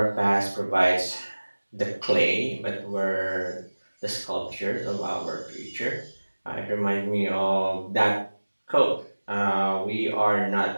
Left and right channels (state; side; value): inverted; both; correlation -1.00